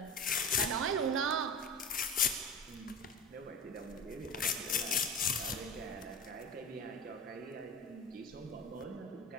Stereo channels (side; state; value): both; normal; correlation 0.32